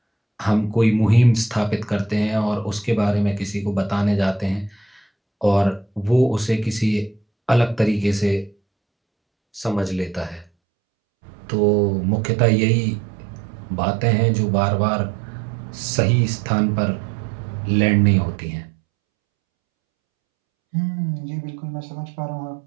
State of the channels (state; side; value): drops out; left; at 10.5 s